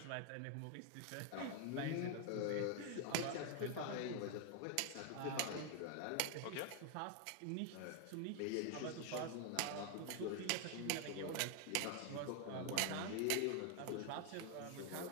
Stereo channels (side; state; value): both; different; correlation 0.01